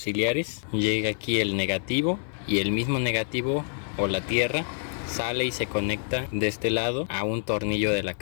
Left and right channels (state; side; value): silent; right; 60 dB below the other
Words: Llega aquí el negativo y el mismo negativo o la tierra sale y se conecta de este lado a un tornillo de la